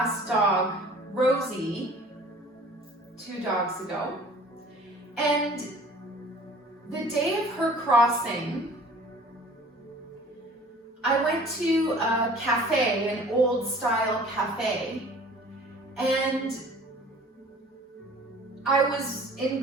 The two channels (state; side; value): normal; both; correlation 0.48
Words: dog, Rosie, 2 dogs ago. And the day of her crossing, I went to a cafe, an old style cafe, and I was